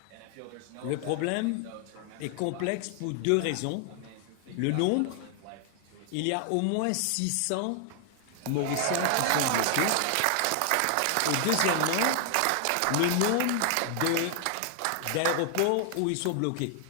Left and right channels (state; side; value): different; both; correlation 0.00